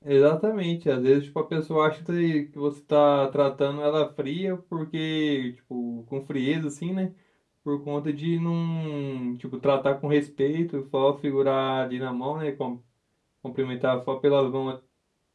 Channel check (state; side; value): identical; both; correlation 1.00